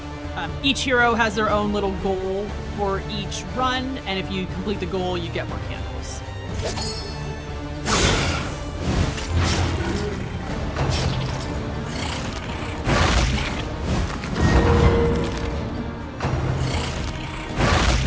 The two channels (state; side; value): identical; both; correlation 1.00